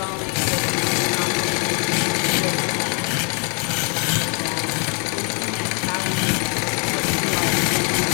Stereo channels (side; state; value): right; quieter; 37.0 dB